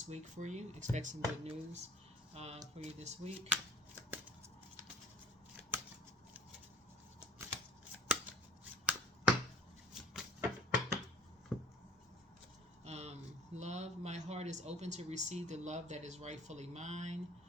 week for you. Expect some good news for you this week. Love, my heart is open to receive the love that is rightfully mine.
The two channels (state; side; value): normal; both; correlation 0.50